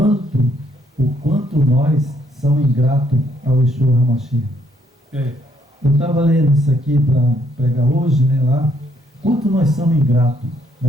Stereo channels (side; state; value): both; normal; correlation 0.70